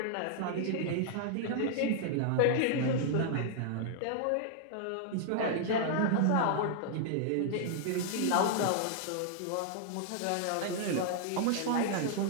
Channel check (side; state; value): both; different; correlation -0.01